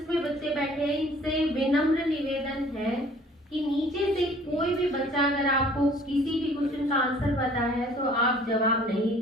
में बच्चे बैठे हैं इनसे विनम्र निवेदन है कि नीचे से कोई भी बच्चा अगर आपको किसी भी क्वेश्चन का आंसर पता है तो आप जवाब नहीं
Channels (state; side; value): normal; both; correlation 0.53